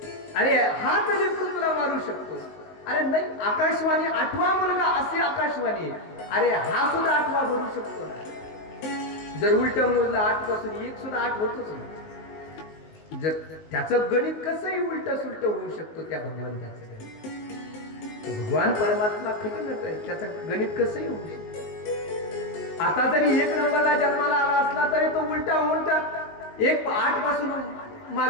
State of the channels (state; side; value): late; right; 19 ms